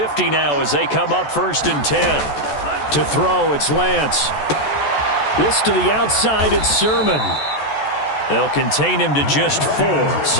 now as they come up 1st and 10. To throw, it's Lance. This to the outside, it's Sermon. They'll contain him to just 4.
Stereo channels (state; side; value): late; right; 14 ms